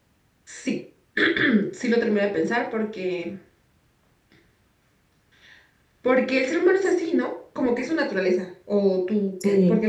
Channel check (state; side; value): identical; both; correlation 1.00